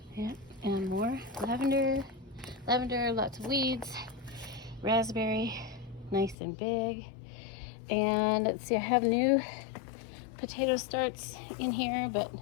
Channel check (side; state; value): right; drops out; at 6.4 s